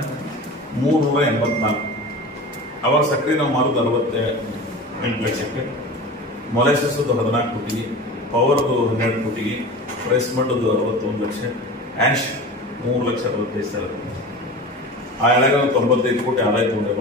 ಅವಾಗ ಸಕ್ಕರೆ ನಾವು ಮಾರೋದು 68 ಲಕ್ಷಕ್ಕೆ. ಮೊಲೆಸಸ್ 14 ಕೋಟಿಗೆ, ಪವರ್ದು 12 ಕೋಟಿಗೆ, ರೈಸ್ ಮಡ್ದು 61 ಲಕ್ಷ, ಆ್ಯಶ್ 3,65,000. ಆ ಎಳೆಗ 95 ಕೋಟಿ ಆದಾಯ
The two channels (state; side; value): normal; both; correlation 0.33